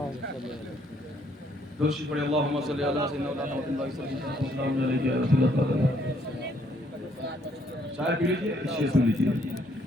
دوشی پڑے اللہم صلی اللہ سیدنا محمد صلی اللہ علیہ وسلم. چائے پی لیجیے، شیئر سن لیجیے.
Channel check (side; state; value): both; normal; correlation 0.68